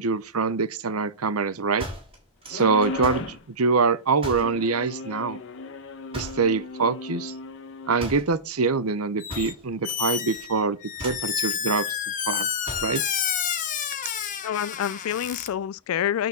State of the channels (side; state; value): both; normal; correlation -0.16